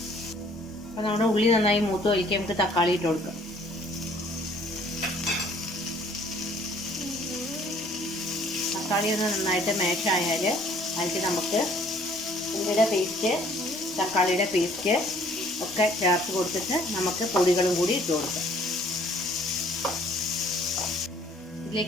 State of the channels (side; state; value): both; normal; correlation 0.58